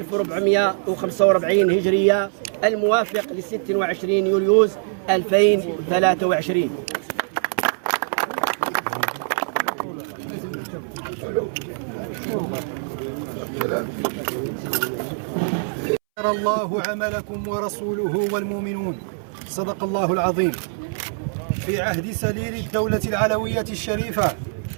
هجرية الموافق ل 26 يوليوز 2023. الله عملكم ورسوله والمؤمنون. صدق الله العظيم. في عهد سليل الدولة العلوية الشريفة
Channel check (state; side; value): silent; left; 63 dB below the other